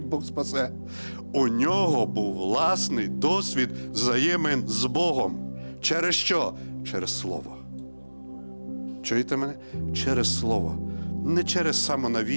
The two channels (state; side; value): inverted; both; correlation -1.00